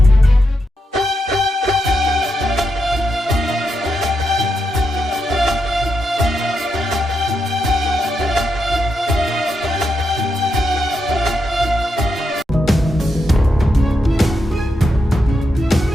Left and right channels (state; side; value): normal; both; correlation 0.84